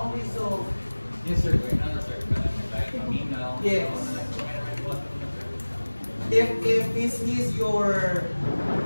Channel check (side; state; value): both; inverted; correlation -1.00